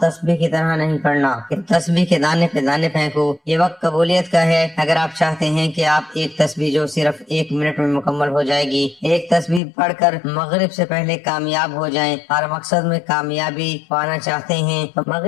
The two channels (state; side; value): drops out; right; at 9.6 s